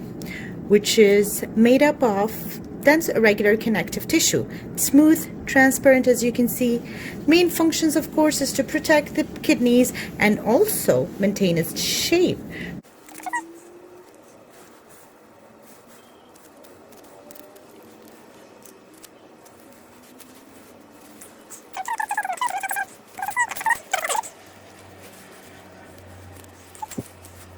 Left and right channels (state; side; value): identical; both; correlation 1.00